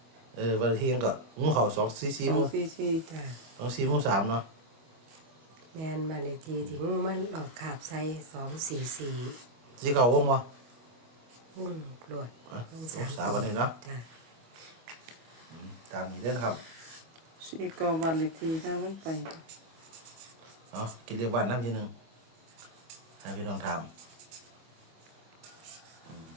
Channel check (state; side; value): late; left; 25 ms